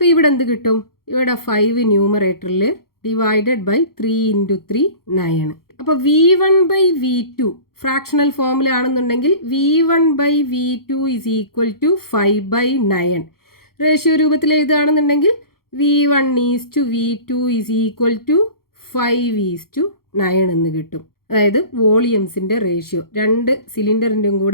ഇവിടെ എന്ത് കിട്ടും? ഇവിടെ 5 ന്യൂമറേറ്ററിൽ ഡിവൈഡഡ് ബൈ 3 × 3 9. അപ്പോൾ V1/V2 ഫ്രാക്ഷണൽ ഫോമിലാണെന്നുണ്ടെങ്കിൽ V1/V2 = 5/9. റേഷ്യോ രൂപത്തിൽ എഴുതുകയാണെന്നുണ്ടെങ്കിൽ V1:V2 = 5:9 എന്ന് കിട്ടും. അതായത് വോളിയംസിൻ്റെ റേഷ്യോ, രണ്ട് സിലിണ്ടറിൻ്റെയും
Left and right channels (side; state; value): right; late; 0.93 ms